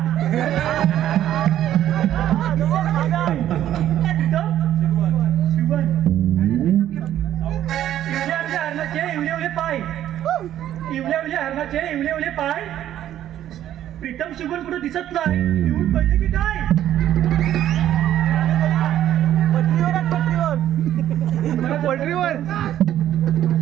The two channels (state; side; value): quieter; left; 11.8 dB